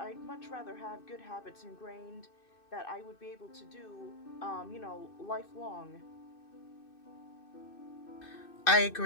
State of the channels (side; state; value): right; late; 2.6 ms